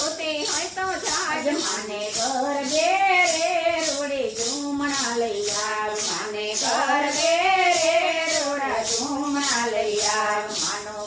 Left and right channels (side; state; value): both; identical; correlation 1.00